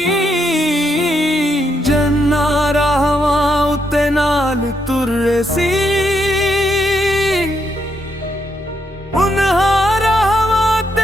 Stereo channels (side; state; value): both; normal; correlation 0.78